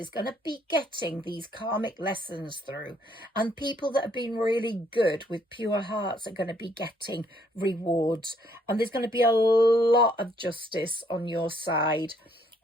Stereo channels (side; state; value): both; normal; correlation 0.67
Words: going to be getting these karmic lessons through, and people that have been really good with pure hearts are going to be getting rewards, and there's going to be a lot of justice on your side,